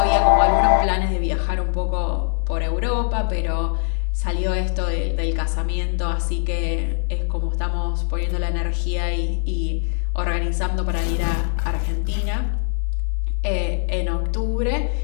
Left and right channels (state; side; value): silent; right; digital silence